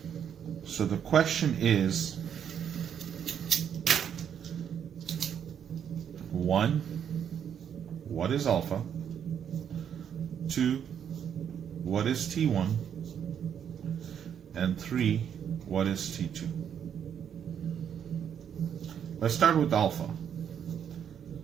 So the question is, 1, what is alpha? 2, what is T1? And 3, what is T2? Let's start with alpha.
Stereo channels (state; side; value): quieter; left; 8.5 dB